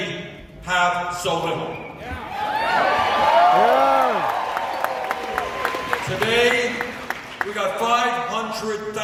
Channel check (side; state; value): both; identical; correlation 1.00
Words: have so little. Today, we got